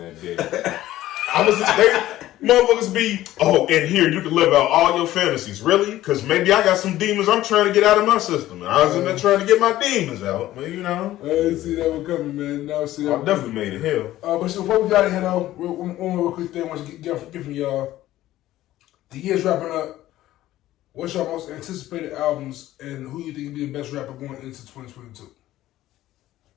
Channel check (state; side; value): quieter; right; 14.7 dB